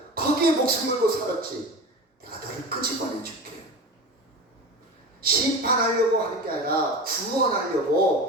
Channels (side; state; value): both; normal; correlation 0.29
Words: 거기에 목숨 걸고 살았지. 내가 너를 끄집어내줄게. 심판하려고 하는 게 아니라